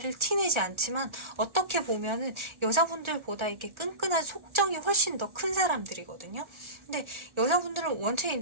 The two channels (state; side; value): late; left; 1.3 ms